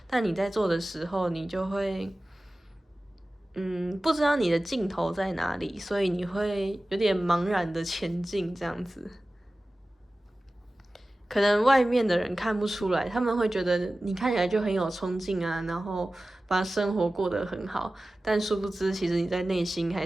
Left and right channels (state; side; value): normal; both; correlation 0.96